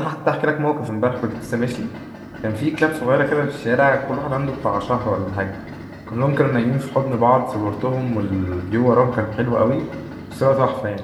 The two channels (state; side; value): identical; both; correlation 1.00